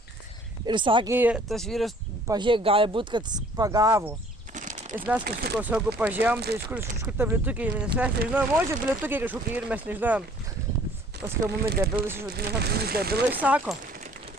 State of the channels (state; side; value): normal; both; correlation 0.55